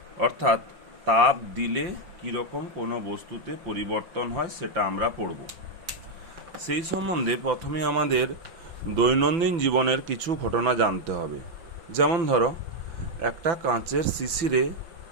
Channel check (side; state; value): left; late; 5.8 ms